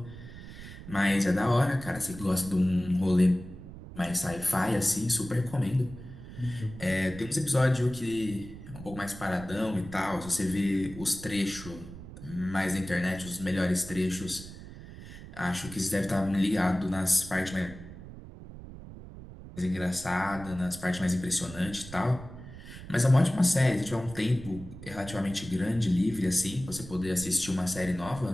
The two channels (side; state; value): right; noise; rumble, 14 dB below the sound